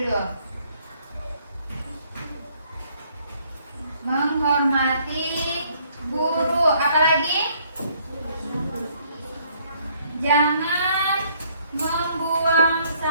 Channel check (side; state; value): both; inverted; correlation -0.65